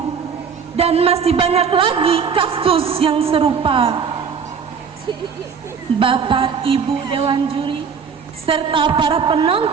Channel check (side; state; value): left; quieter; 6.3 dB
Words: Dan masih banyak lagi kasus yang serupa. Bapak, Ibu Dewan Juri serta para